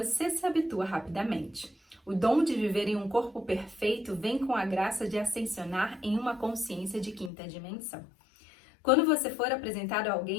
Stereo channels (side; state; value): right; drops out; at 7.3 s